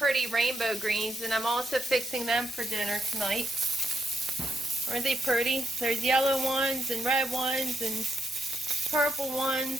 rainbow greens, and I'm also fixing them for dinner tonight. Aren't they pretty? There's yellow ones and red ones and purple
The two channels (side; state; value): both; normal; correlation 0.79